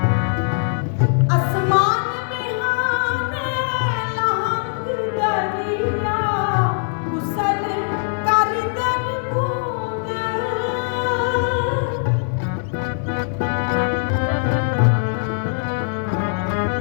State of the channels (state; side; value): silent; right; digital silence